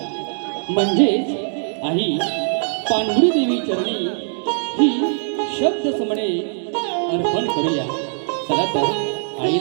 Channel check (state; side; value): silent; left; digital silence